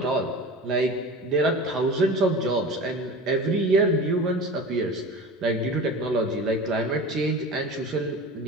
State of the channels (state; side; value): normal; both; correlation 0.34